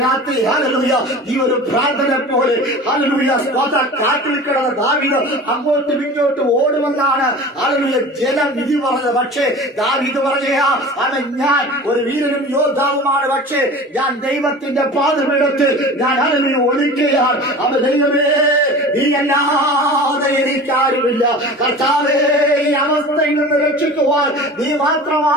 രാത്രി ഹല്ലേലൂയ ഈ ഒരു പ്രാർത്ഥന പോലെ ഹല്ലേലൂയ കാട്ടിൽ കിടന്ന ദാവീദ് അങ്ങോട്ടും ഇങ്ങോട്ടും ഓടുമെന്നാണ് ഹല്ലേലൂയ ജനം വിധി പറഞ്ഞത്. പക്ഷേ ദാവീദ് പറഞ്ഞാ അവൻ ഞാൻ ഒരു വീരനും യോദ്ധാവുമാണ്. പക്ഷേ ഞാൻ ദൈവത്തിന്റെ പാദപീഠത്തിൽ ഞാൻ ഹല്ലേലൂയ ഒളിക്കുകയാണ്. അവൻ ദൈവമേ നീയല്ലാതെ എനിക്കാരുമില്ല. കർത്താവേ ഈ അവസ്ഥയിൽ നിന്ന് രക്ഷിക്കുവാൻ നീ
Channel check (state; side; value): normal; both; correlation 0.37